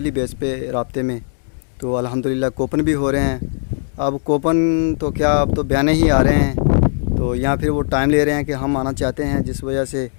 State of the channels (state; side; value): silent; right; digital silence